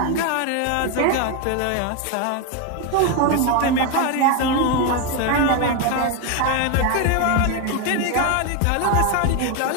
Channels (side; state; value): both; different; correlation 0.02